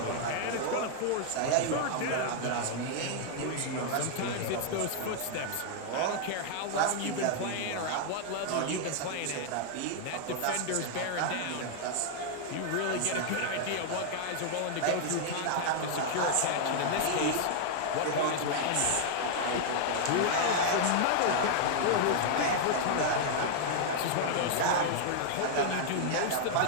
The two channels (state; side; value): different; both; correlation -0.01